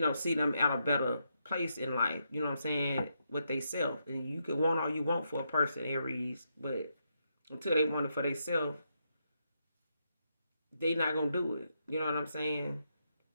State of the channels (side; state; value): both; inverted; correlation -0.81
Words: see them at a better place in life. You know what I'm saying? With they self. And you can want all you want for a person, Aries, but until they want it for themselves, they not gonna do it. You know what I'm saying?